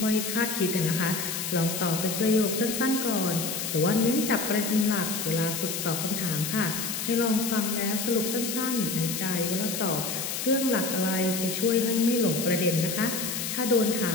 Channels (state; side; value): noise; left; hiss, 3 dB below the sound